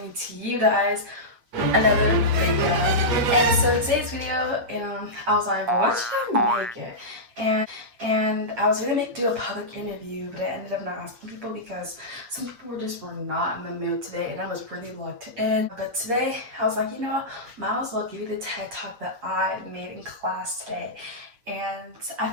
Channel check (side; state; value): left; late; 8.4 ms